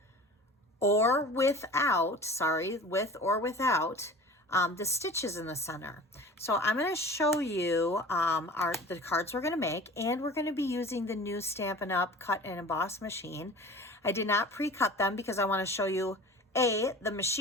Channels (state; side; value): normal; both; correlation 0.39